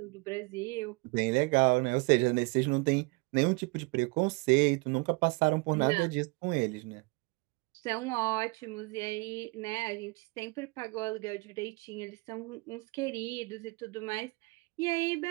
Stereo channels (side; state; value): left; quieter; 27.3 dB